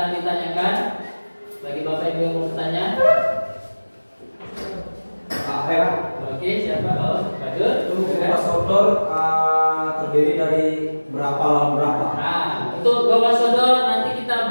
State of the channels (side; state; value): both; inverted; correlation -1.00